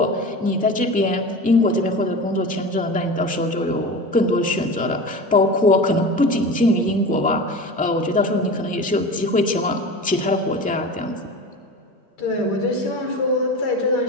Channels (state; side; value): normal; both; correlation 0.31